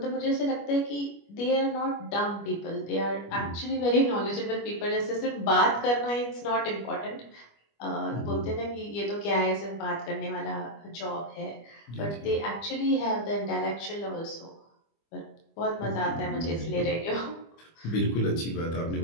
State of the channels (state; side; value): late; right; 25 ms